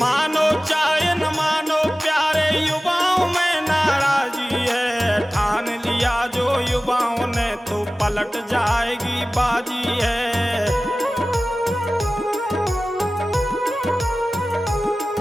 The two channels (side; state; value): both; normal; correlation 0.97